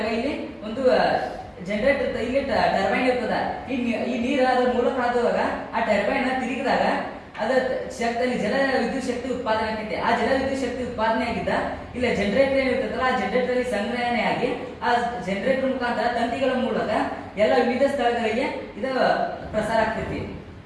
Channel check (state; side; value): identical; both; correlation 1.00